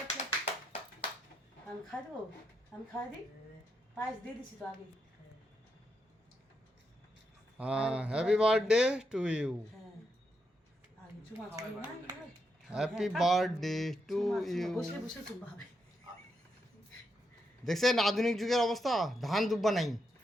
আমি খাই দেবো আমি খাই দিই পায়েস দিয়ে দিছি তো আগে হ্যাঁ হ্যাপি বার্থডে টু ইউ হ্যাঁ আগে চুমা চুমা না হ্যাপি বার্থডে টু ইউ বসে বসে চুমা হবে দেখছেন আধুনিক যুগের অবস্থা ধান দুব্বা নাই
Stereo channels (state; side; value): normal; both; correlation 0.82